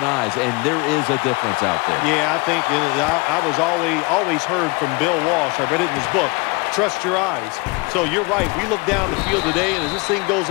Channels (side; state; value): right; quieter; 27.0 dB